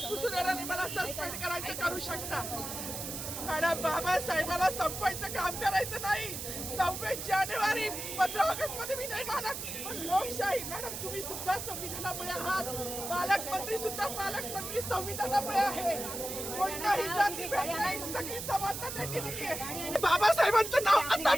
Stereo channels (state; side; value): noise; right; hiss, 6 dB below the sound